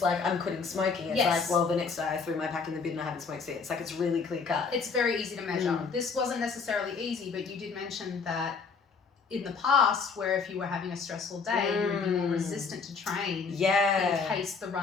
like, I'm quitting smoking, it's Yes. like, well, the next day I threw my pack in the bin and I haven't smoked since. Like, it's really clear cut. It's very easy to measure. This wasn't necessarily easy, but you did mention that in the past, where if you were having a stressful day, you would be more resistant to train. Yeah. In case the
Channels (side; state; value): right; quieter; 5.1 dB